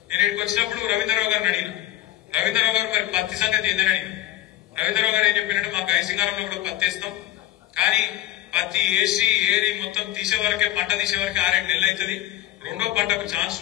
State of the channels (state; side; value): quieter; right; 14.1 dB